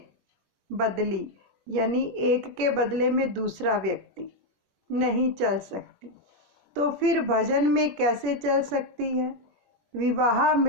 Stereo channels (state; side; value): late; left; 21 ms